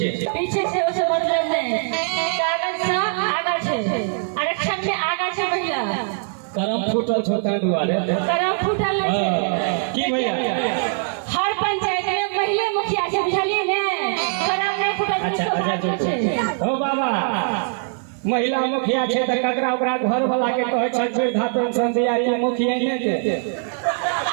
पीछे से उसे मतलब नहीं कागज से आगे छे आरक्षण से आगे छे भैया करम फूटल छोटा दुआरे करम फूटल नहीं छे की भैया हर पंचायत में पहले मुखिया से बुझलिए ने करम नहीं फूटल अच्छा ओ बाबा महिला मुखिया छे त ककरा ओकरा घर वाला के कहै छै वृद्धा पेंशन दिया कि मुखिया ने के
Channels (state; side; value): silent; left; 57 dB below the other